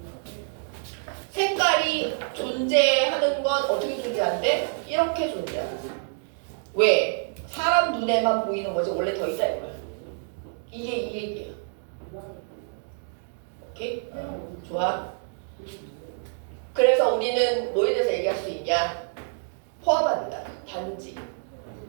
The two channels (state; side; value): silent; left; digital silence